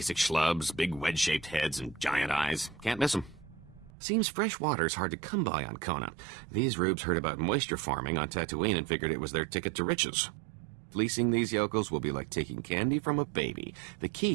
schlubs, big wedge-shaped heads and giant eyes. Can't miss them. Seems fresh water's hard to come by on Kona. These rubes heard about moisture farming on Tatooine and figured it was their ticket to riches. Fleecing these yokels will be like taking candy from a baby. The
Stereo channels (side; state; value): left; drops out; at 3.9 s